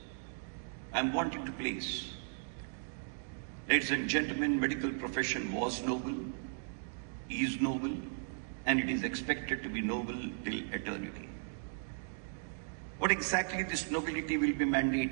I'm wanting to place, ladies and gentlemen, medical profession was noble, is noble, and it is expected to be noble till eternity. What exactly this nobility will be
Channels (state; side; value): silent; left; digital silence